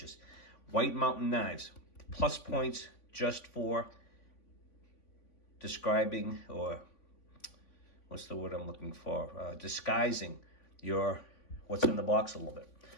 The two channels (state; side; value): late; right; 3.5 ms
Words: White Mountain Knives. Plus points just for describing, or what's the word I'm looking for? Disguising your what's in the box a little bit.